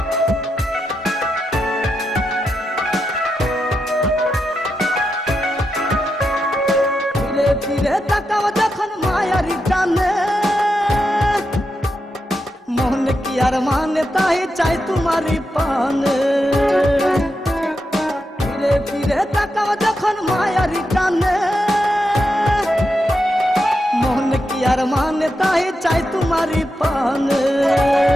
ফিরে তাকাও যখন মায়ারি টানে, মন কি আর মানে তাই চাই তোমারই পানে। ফিরে ফিরে তাকাও যখন মায়ারি টানে, মন কি আর মানে তাই চাই তোমারই পানে।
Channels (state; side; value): normal; both; correlation 0.86